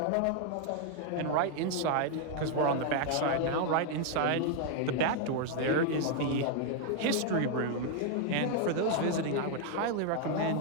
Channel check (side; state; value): both; different; correlation 0.00